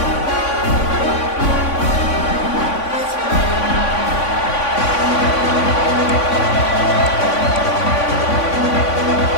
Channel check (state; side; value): late; right; 3.5 ms